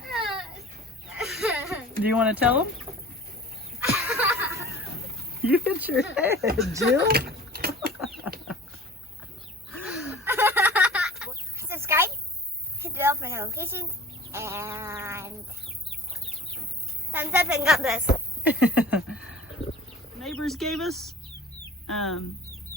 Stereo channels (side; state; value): both; normal; correlation 0.43